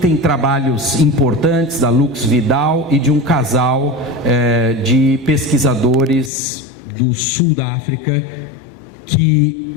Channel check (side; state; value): right; drops out; at 6.3 s